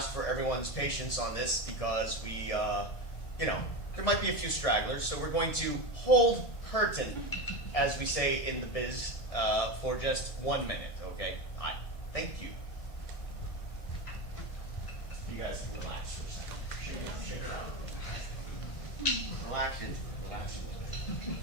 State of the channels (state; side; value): late; right; 2.0 ms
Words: for everyone's patience on this because we, there might be a few stragglers. So we're going to hold curtain, as we say in the biz, for just 1 minute, okay? Hi. Thank you. You guys can relax for a second. Shake it up. Relax it. Relax it.